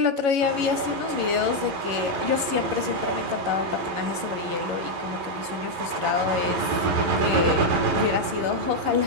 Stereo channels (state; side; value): late; left; 11 ms